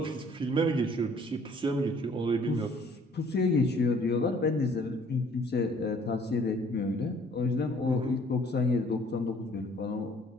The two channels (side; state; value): both; normal; correlation 0.57